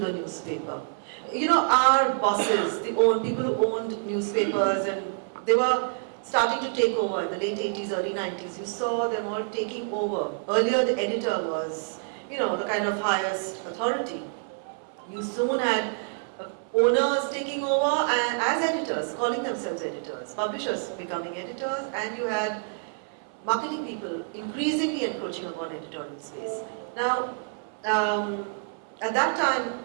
newspaper. Our bosses, people who owned newspapers, and they were starting to take over in the late 80s, early 90s. You saw them all taking over. Earlier, the editor was, the kind of highest authority. You soon had owners taking over and as editors, calling themselves editors, publishers becoming editors, and you had marketing people increasingly encroaching upon editorial space. Now, at that time,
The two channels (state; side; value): silent; left; 60 dB below the other